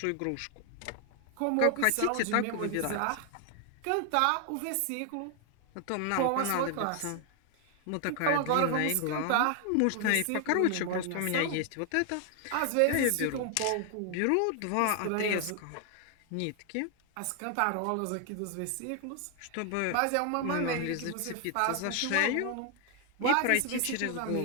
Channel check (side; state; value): both; different; correlation 0.00